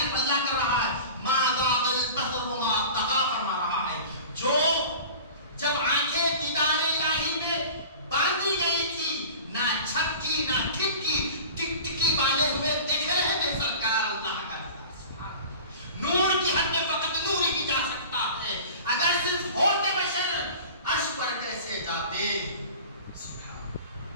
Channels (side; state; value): both; inverted; correlation -0.39